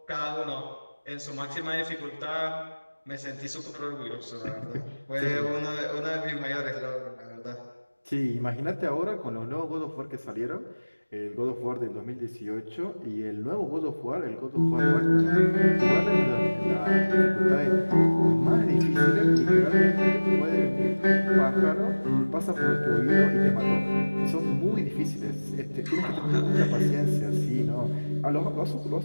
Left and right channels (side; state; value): both; inverted; correlation -1.00